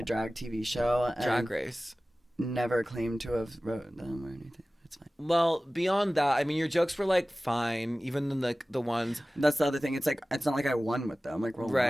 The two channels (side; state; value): both; normal; correlation 0.97